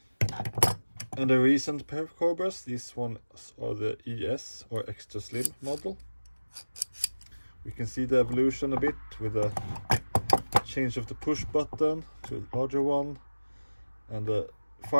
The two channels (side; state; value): both; inverted; correlation -1.00